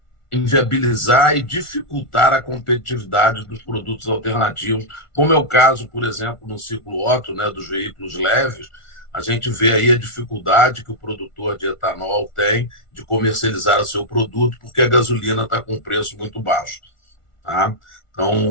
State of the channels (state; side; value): late; right; 1.4 ms